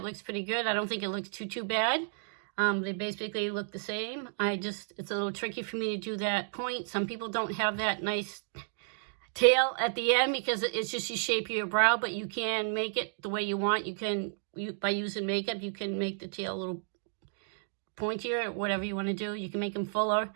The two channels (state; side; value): silent; left; digital silence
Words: looks pretty good. I don't think it looks too bad. They basically look the same. It's a little tricky for me to do that point. Some people don't have that nice tail at the end because it's just the shape of your brow, but you can make it the way you want. By using makeup, you can make the tail a little pointier, or whatever you want to do. You can make them fuller.